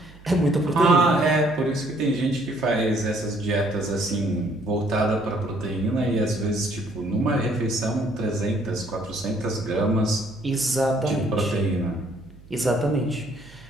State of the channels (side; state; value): right; noise; hum, 22 dB below the sound